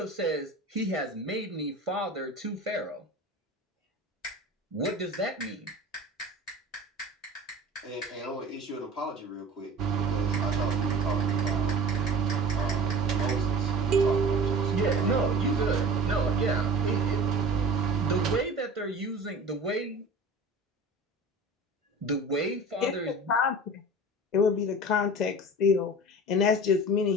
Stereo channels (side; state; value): both; normal; correlation 0.39